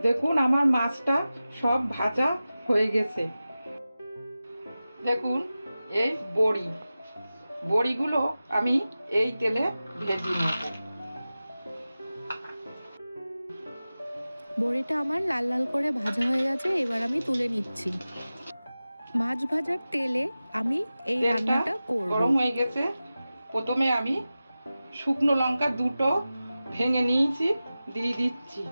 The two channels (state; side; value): inverted; both; correlation -0.95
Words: দেখুন, আমার মাছটা সব ভাজা হয়ে গেছে। দেখুন, এই বড়িগুলো আমি এই তেলে ভেজে নেব। বড়িটা আমার লাল লাল করে ভাজা হয়ে গেছে, এবার আমি তুলে নিচ্ছি। মাছ ভাজার তেলে আমি এই রান্নাটা করব। গরম হয়ে গেছে, প্রথমে আমি শুকনো লঙ্কা দুটো ভেঙে নিয়েছি, দিয়ে দিচ্ছি।